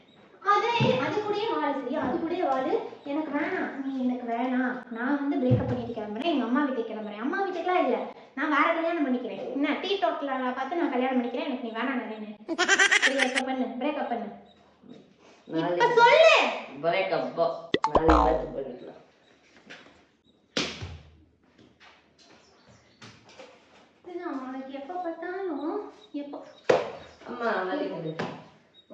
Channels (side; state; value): both; identical; correlation 1.00